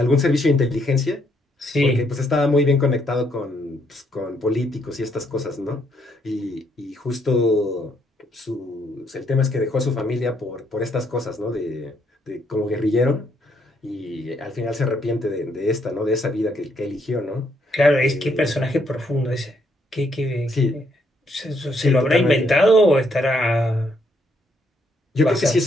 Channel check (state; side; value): normal; both; correlation 0.73